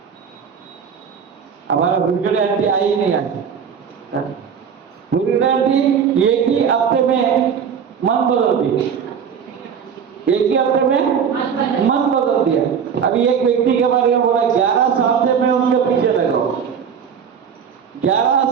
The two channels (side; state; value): left; quieter; 7.3 dB